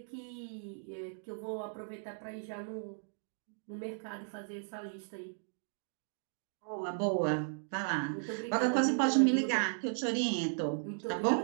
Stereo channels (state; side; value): silent; left; digital silence